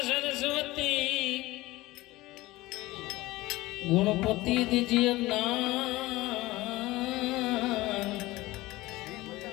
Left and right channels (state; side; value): quieter; right; 19.0 dB